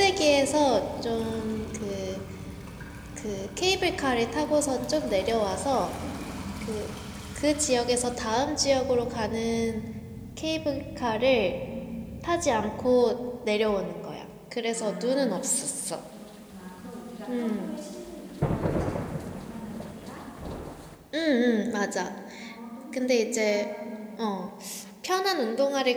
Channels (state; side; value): identical; both; correlation 1.00